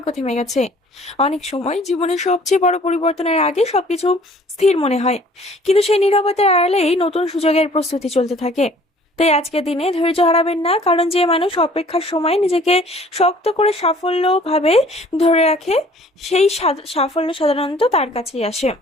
থেমে গেছে। অনেক সময় জীবনের সবচেয়ে বড় পরিবর্তনের আগে সবকিছু স্থির মনে হয়, কিন্তু সেই নীরবতার আড়ালেই নতুন সুযোগের প্রস্তুতি চলতে থাকে। তাই আজকের দিনে ধৈর্য হারাবেন না, কারণ যে মানুষ অপেক্ষার সময় নিজেকে শক্ত করে সাফল্য ভাবে ধরে রাখে, সেই সাফল্য সাধারণত তার কাছেই আসে।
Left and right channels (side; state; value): both; normal; correlation 0.54